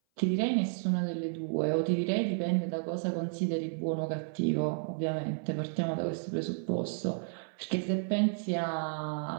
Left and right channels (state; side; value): silent; left; 56 dB below the other